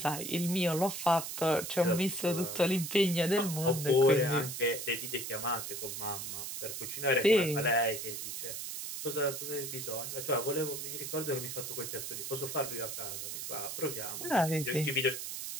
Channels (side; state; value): right; noise; hiss, 6 dB below the sound